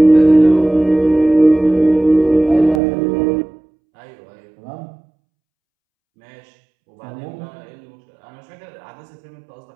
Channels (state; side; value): drops out; left; at 2.8 s